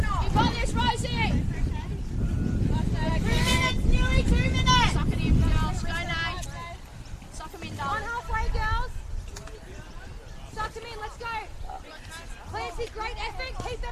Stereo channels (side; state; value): both; identical; correlation 1.00